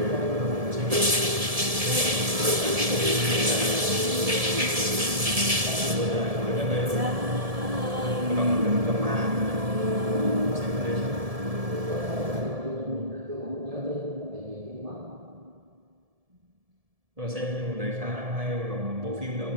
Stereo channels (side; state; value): left; late; 1.7 ms